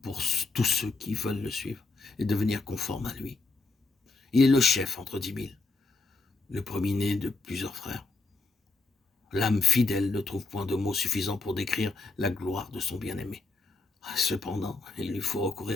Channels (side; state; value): right; quieter; 3.6 dB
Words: pour tous ceux qui veulent le suivre et devenir conformes à lui. Il est le chef entre 10 000, le premier-né de plusieurs frères. L'âme fidèle ne trouve point de mots suffisants pour décrire la gloire de son bien-aimé. Cependant, il lui faut